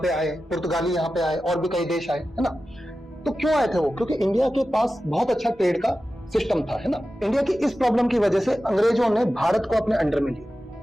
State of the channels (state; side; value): normal; both; correlation 0.93